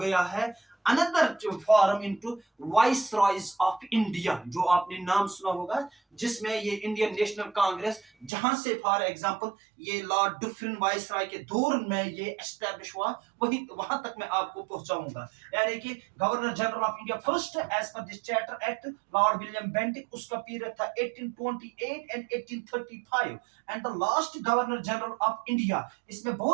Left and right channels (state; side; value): drops out; left; at 8.3 s